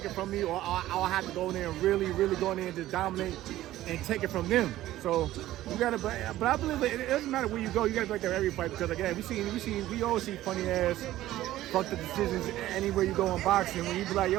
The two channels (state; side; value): quieter; left; 14.8 dB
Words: it from me, or I'll have to go in there and really go in there and just dominate and take it from them. So you gotta, but I believe it doesn't matter where you go. You gotta be like that every fight, because again, we always see funny ass fuck the decisions anywhere you go in boxing. When you be like,